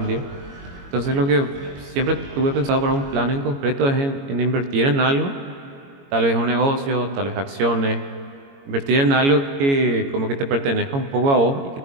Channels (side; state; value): left; late; 22 ms